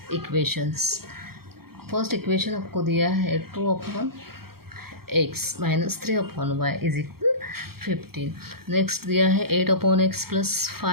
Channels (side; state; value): left; late; 0.94 ms